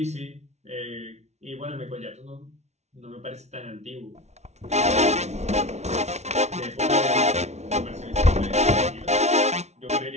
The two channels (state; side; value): late; left; 0.32 ms